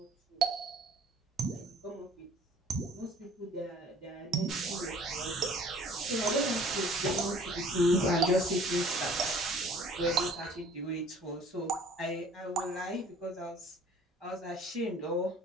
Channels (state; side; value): normal; both; correlation 0.53